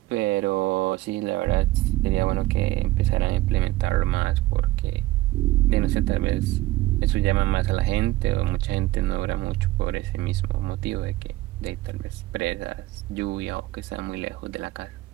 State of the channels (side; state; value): left; quieter; 17.9 dB